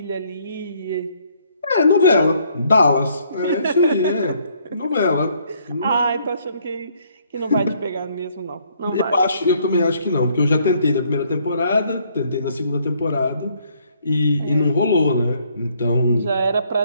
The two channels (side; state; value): both; inverted; correlation -0.67